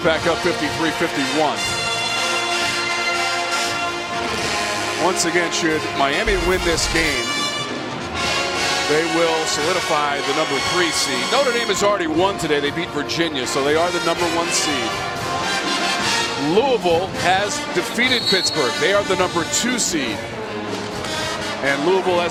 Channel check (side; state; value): both; identical; correlation 1.00